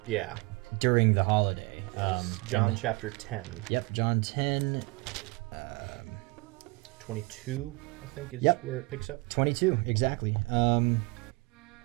Yeah. During the holiday. Yes. John chapter 10. Yep, John 10. 22, I think, is where it picks up. 22, exactly.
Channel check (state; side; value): quieter; left; 25.3 dB